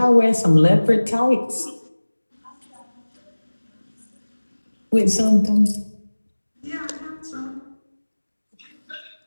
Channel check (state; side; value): inverted; both; correlation -1.00